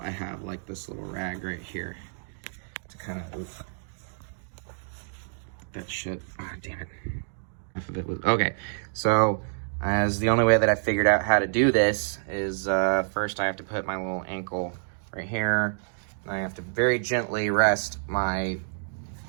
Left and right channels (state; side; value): silent; left; digital silence